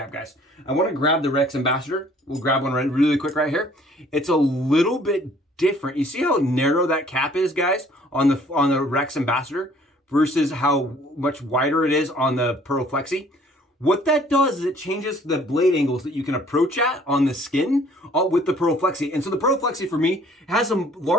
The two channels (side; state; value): both; normal; correlation 0.57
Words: guys. I want to grab the Rex Ambassador. We'll grab one really quick right here. It's a little bit different. You see how narrow that cap is, guys, on the Rex Ambassador versus how much wider it is on the Pearl Flexi? What that does is it changes the blade angles that you can approach at on the skin with the Pearl Flexi. And so the Pearl Flexi for me has a